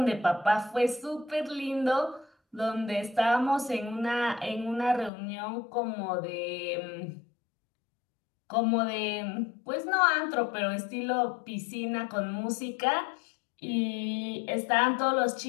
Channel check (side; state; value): right; drops out; at 5.1 s